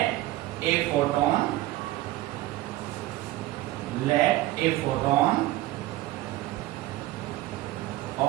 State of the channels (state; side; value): quieter; left; 16.5 dB